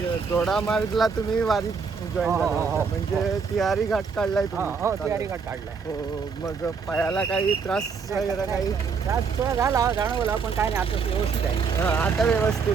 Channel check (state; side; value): quieter; left; 5.6 dB